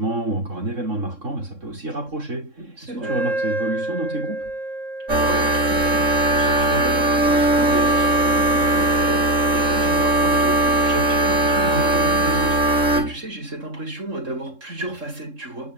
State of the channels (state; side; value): late; left; 3.7 ms